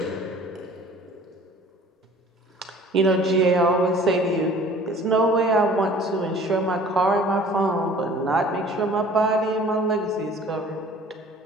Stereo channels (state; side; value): normal; both; correlation 0.49